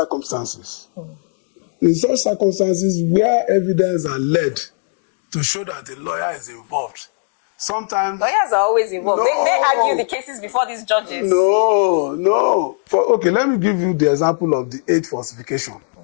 In such circumstances where evidence are led to show that the lawyer is involved, sometimes Lawyers are always involved. No. They argue the cases before these judges. No. Okay, let me give you the example of the 8th falsification.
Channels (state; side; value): silent; right; 67 dB below the other